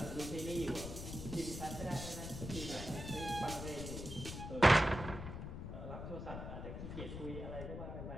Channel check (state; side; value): noise; left; rumble, 7 dB below the sound